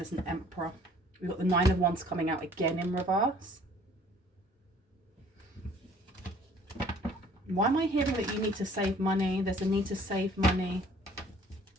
an Emperor. We've got the Nine of Wands coming out again in reverse. Why am I hearing that you need to save money? There's a need to save money.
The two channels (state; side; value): normal; both; correlation 0.55